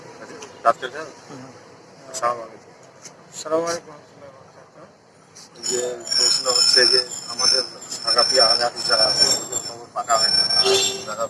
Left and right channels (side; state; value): both; identical; correlation 1.00